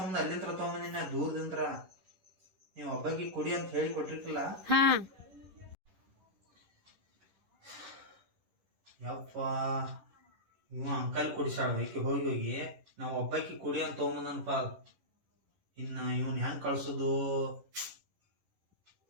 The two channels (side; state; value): left; late; 11 ms